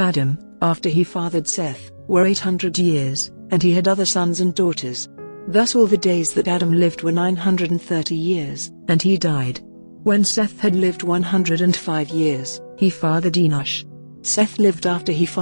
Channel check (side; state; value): both; inverted; correlation -1.00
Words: after he fathered Seth, were 800 years, and he had other sons and daughters. Thus all the days that Adam lived were 930 years, and he died. When Seth had lived 105 years, he fathered Enosh. Seth lived after he